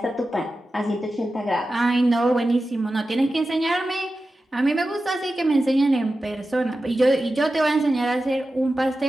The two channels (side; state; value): both; normal; correlation 0.93